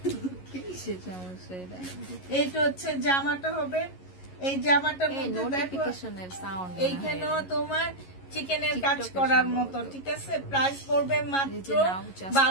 এইটা হচ্ছে জামাটা হবে, এই জামাটার এইখানেও তোমার চিকেনের কাজ করার মতো। ঠিক আছে, প্রাইস পড়বে মাত্র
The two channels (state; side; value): late; right; 11 ms